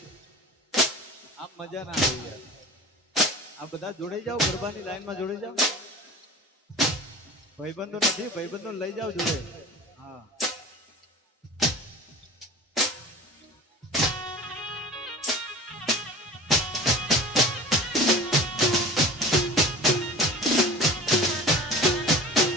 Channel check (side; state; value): both; normal; correlation 0.37